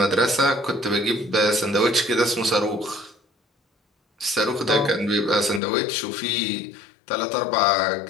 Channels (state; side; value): drops out; right; at 5.6 s